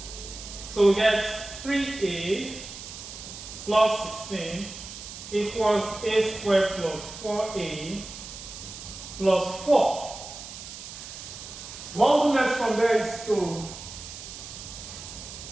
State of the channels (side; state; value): right; noise; hiss, 12 dB below the sound